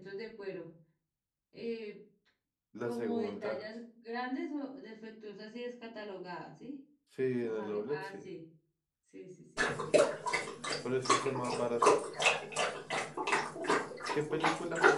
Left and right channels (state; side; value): identical; both; correlation 1.00